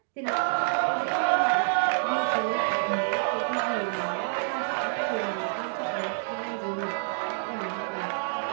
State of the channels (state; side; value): silent; left; digital silence